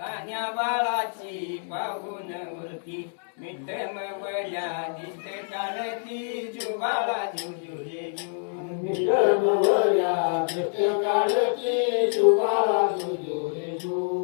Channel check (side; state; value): right; silent; digital silence